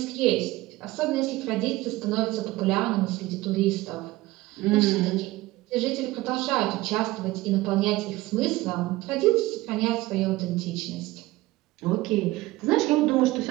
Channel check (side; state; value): left; quieter; 18.7 dB